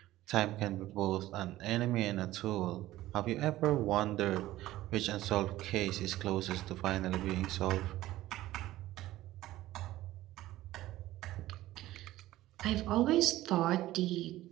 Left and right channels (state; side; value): quieter; left; 15.7 dB